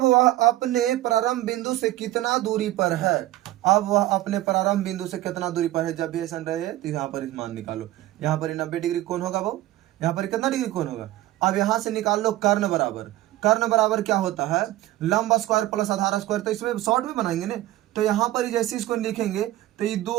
वह अपने प्रारंभ बिंदु से कितना दूरी पर है? अब वह अपने प्रारंभ बिंदु से कितना दूरी पर है? जब भी ऐसा रहे तो यहाँ पर इस मान निकालो, यहाँ पर 90 डिग्री कोण होगा वो, यहाँ पर कितना डिग्री कोण होगा? अब यहाँ से निकाल लो कर्ण बराबर। कर्ण बराबर क्या होता है? लंब स्क्वायर प्लस आधार स्क्वायर। तो इसमें शॉर्ट में बनाएंगे ना, तो यहाँ पर जैसे इसको लिखेंगे तो ये 2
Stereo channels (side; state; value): left; quieter; 15.7 dB